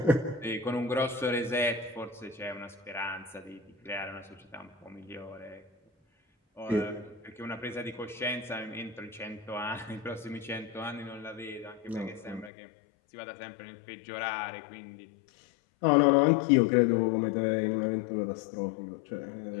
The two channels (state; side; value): drops out; right; at 12.5 s